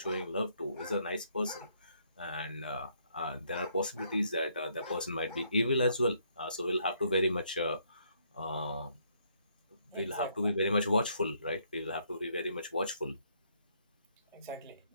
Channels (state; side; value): inverted; both; correlation -0.70